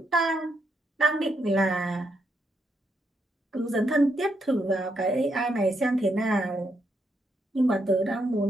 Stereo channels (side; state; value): both; normal; correlation 0.80